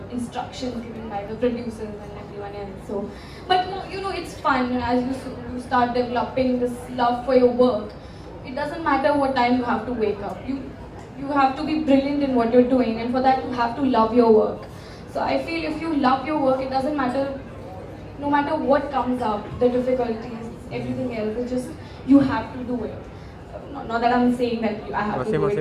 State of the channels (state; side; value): identical; both; correlation 1.00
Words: instructions given by the producers and everyone else. So, but it's fun as you start developing this love for your work. It doesn't matter what time you have to wake up. You have to be brilliant in what you're doing, and for that you have to love your work. So I feel if you love your work, it doesn't matter, no matter what comes up, the difficulties, everything else. It's just you have to do it. Not that I'm saying that I have to do it